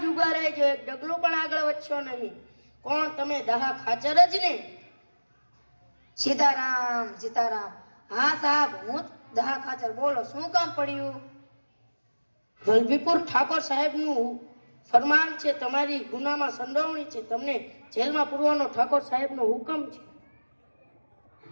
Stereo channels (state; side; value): inverted; both; correlation -1.00